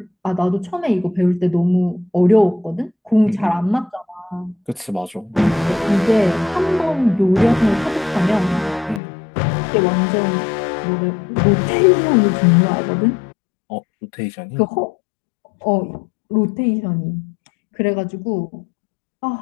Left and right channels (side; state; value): right; drops out; at 9.0 s